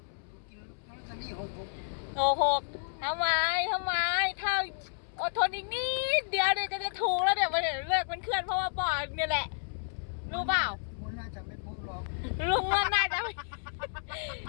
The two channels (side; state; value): right; silent; 57 dB below the other